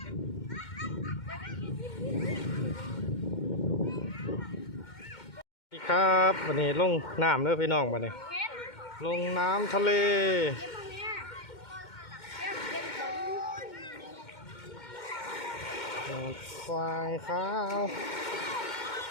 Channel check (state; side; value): late; right; 2.1 ms